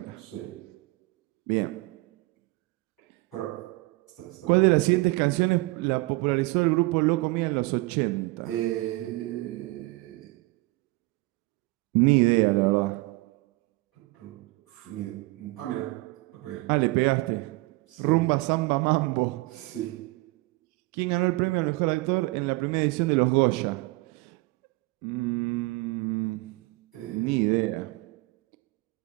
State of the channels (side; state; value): left; quieter; 22.4 dB